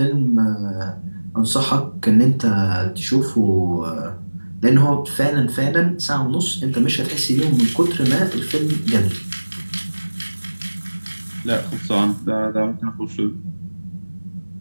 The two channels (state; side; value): inverted; both; correlation -1.00